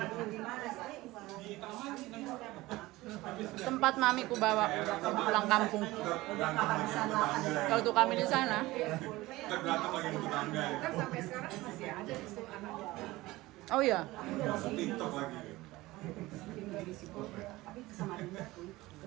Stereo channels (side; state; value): left; quieter; 19.1 dB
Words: Tempat Mami ku bawa pulang kampung. Kalau tuh kami di sana. Kan sampai sekarang masih ada di situ anak. Oh iya.